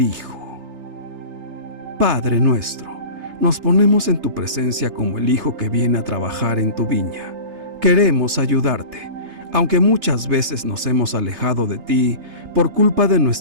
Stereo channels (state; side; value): late; left; 3.3 ms